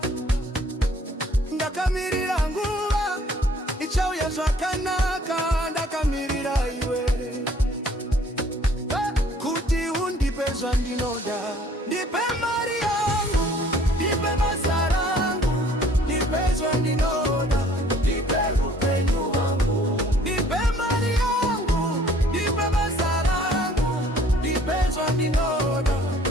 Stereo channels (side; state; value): both; normal; correlation 0.56